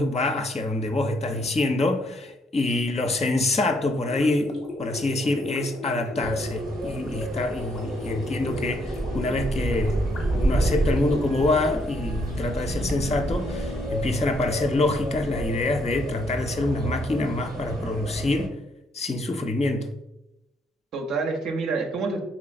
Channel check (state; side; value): normal; both; correlation 0.71